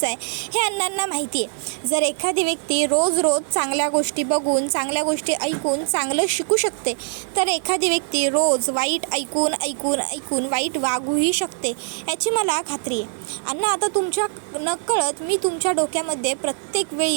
आहे हे अण्णांना माहिती आहे. जर एखादी व्यक्ती रोज चांगल्या गोष्टी बघून, चांगल्या गोष्टी ऐकून चांगलं शिकू शकते, तर एखादी व्यक्ती रोज वाईट ऐकून वाईट वागूही शकते याची मला खात्री आहे. अण्णा, आता तुमच्या नकळत मी तुमच्या डोक्यामध्ये प्रत्येक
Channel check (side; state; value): left; silent; digital silence